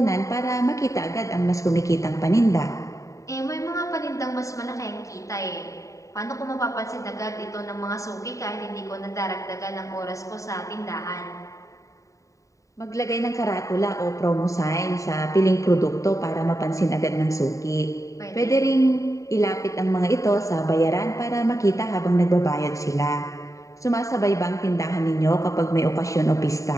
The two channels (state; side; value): late; right; 0.16 ms